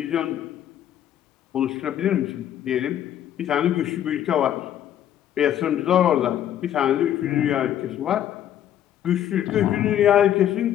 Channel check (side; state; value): right; quieter; 10.9 dB